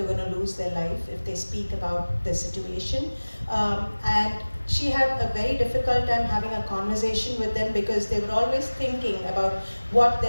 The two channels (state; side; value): inverted; both; correlation -1.00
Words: were going to lose their life if they speak about their situation. And she had a very difficult time having a conversation with them, because they were always thinking about what